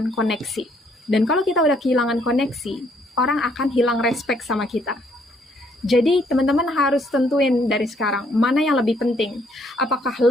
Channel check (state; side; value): normal; both; correlation 0.67